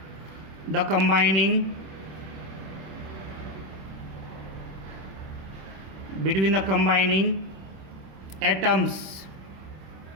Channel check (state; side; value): late; left; 26 ms